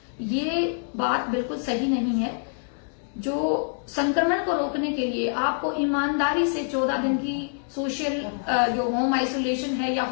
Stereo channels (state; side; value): silent; right; digital silence